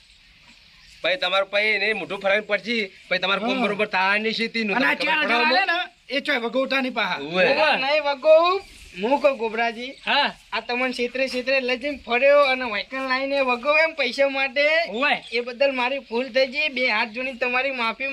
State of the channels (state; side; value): identical; both; correlation 1.00